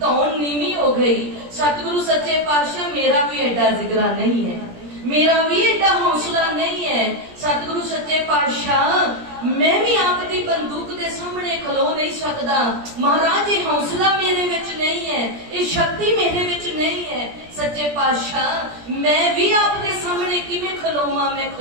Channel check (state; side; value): late; left; 17 ms